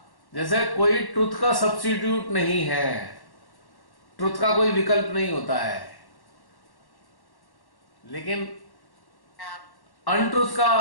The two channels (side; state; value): right; late; 1.1 ms